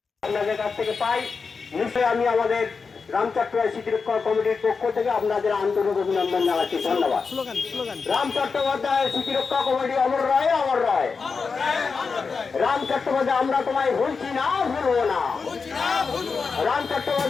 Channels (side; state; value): right; quieter; 5.0 dB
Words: আপনাদের কাছ থেকে পাই, নিশ্চয়ই আমি আমাদের রাম চট্টোপাধ্যায় স্মৃতি রক্ষা কমিটির পক্ষ থেকে আপনাদের আন্তরিক অভিনন্দন জানাচ্ছি। ধন্যবাদ। রাম চট্টোপাধ্যায় স্মৃতি রক্ষা কমিটি অমর রায়, অমর রায়। রাম চট্টোপাধ্যায় আমরা তোমায় ভুলছি না, ভুলবো না। রাম